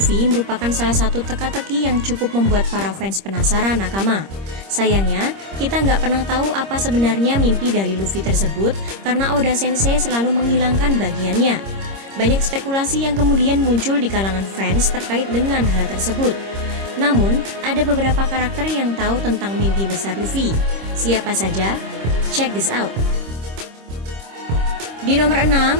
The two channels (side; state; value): left; late; 26 ms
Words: merupakan salah satu teka-teki yang cukup membuat para fans penasaran nakama. Sayangnya, kita nggak pernah tahu apa sebenarnya mimpi dari Luffy tersebut karena Oda Sensei selalu menghilangkan bagiannya. Banyak spekulasi yang kemudian muncul di kalangan fans terkait dengan hal tersebut. Namun, ada beberapa karakter yang tahu tentang mimpi besar Luffy. Siapa saja? Check this out. Di nomor